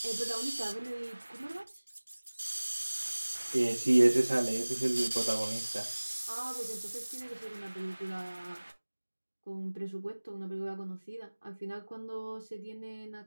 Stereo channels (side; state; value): both; inverted; correlation -1.00